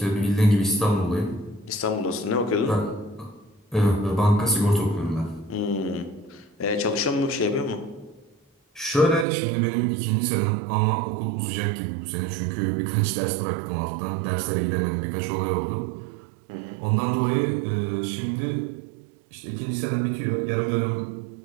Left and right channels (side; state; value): left; drops out; at 9.2 s